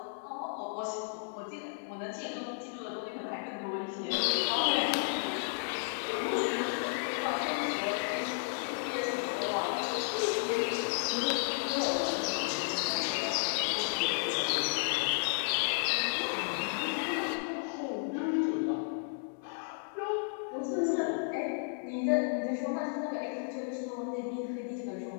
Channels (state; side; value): silent; right; 56 dB below the other